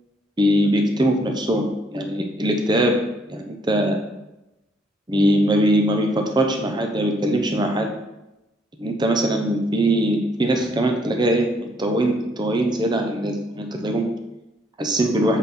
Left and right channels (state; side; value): normal; both; correlation 0.68